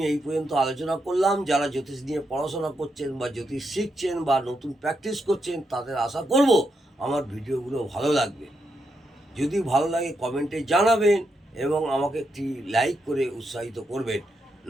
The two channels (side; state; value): both; normal; correlation 0.82